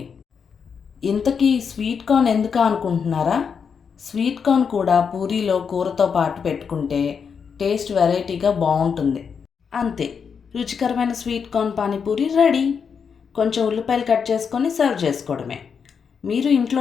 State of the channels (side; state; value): right; quieter; 6.4 dB